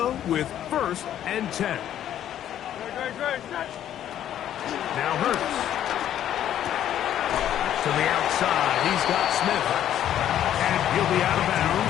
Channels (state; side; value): quieter; right; 11.0 dB